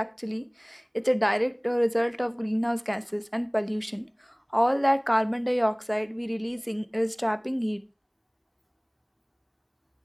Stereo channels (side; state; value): both; identical; correlation 1.00